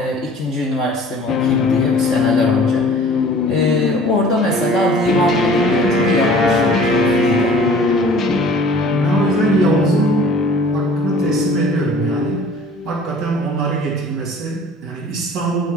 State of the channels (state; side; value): normal; both; correlation 0.48